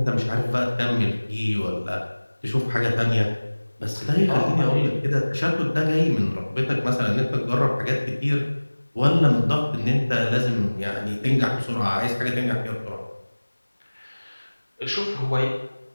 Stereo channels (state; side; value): inverted; both; correlation -1.00